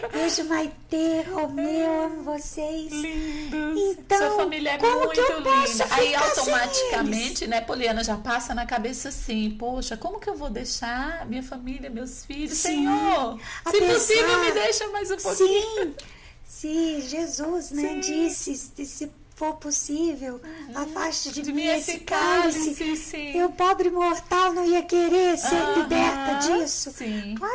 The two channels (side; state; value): both; identical; correlation 1.00